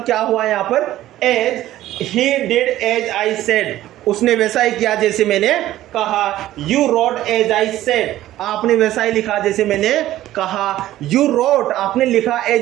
क्या हुआ यहां पर, as. He did as I said, उसने वैसा ही किया जैसे मैंने कहा। You wrote as I said, आपने वैसा ही लिखा जैसे मैंने कहा। यू रोट, आपने लिखा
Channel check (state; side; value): quieter; left; 14.3 dB